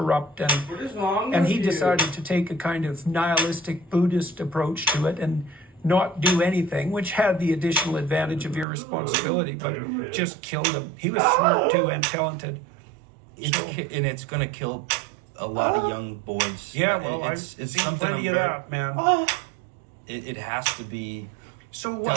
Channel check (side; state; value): left; drops out; at 8.7 s